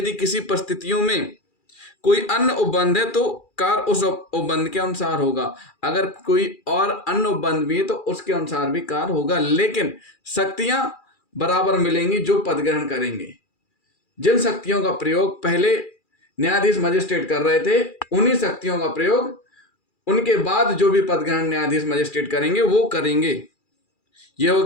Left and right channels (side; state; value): right; late; 2.4 ms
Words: किसी परिस्थितियों में कोई अन्य उपबंध है तो कार्य उस उपबंध के अनुसार होगा, अगर कोई और अन्य उपबंध भी है तो उसके अनुसार भी कार्य होगा, लेकिन शक्तियां बराबर मिलेंगी जो पद ग्रहण करेंगे। जिन शक्तियों का प्रयोग पहले न्यायाधीश मजिस्ट्रेट कर रहे थे उन्हीं शक्तियों का प्रयोग उनके बाद जो भी पद ग्रहण न्यायाधीश मजिस्ट्रेट करेंगे वो करेंगे। ये हो